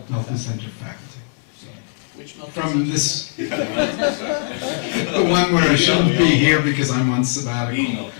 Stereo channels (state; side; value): silent; right; 61 dB below the other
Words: Melton Center faculty. from this, the one where I shouldn't be here because I'm on sabbatical.